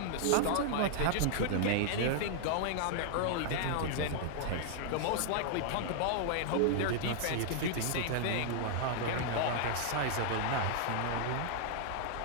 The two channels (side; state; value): both; different; correlation -0.01